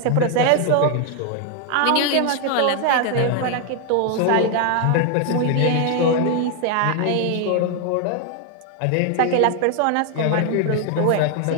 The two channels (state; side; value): different; both; correlation 0.00